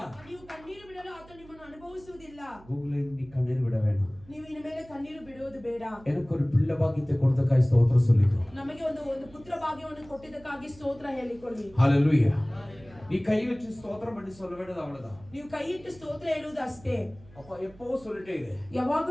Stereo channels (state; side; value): noise; right; hum, 23 dB below the sound